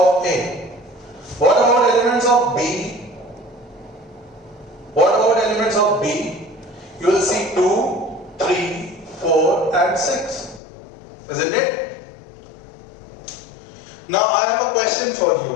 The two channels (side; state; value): right; drops out; at 10.6 s